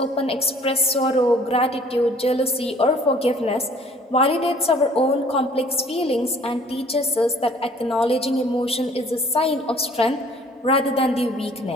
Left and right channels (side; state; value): both; normal; correlation 0.54